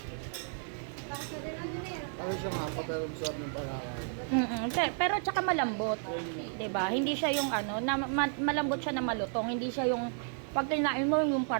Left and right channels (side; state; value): left; silent; 56 dB below the other